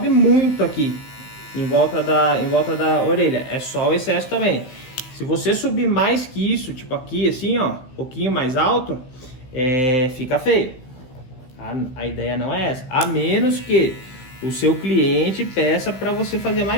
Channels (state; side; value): late; right; 16 ms